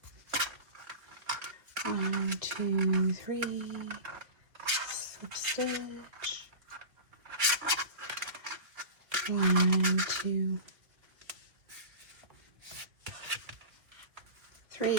1, 2, 3. Slip stitch. 1, 2,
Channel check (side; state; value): left; late; 2.5 ms